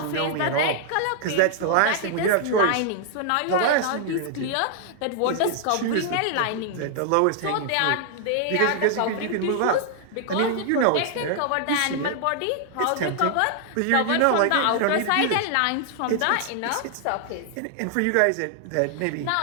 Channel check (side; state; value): both; different; correlation 0.00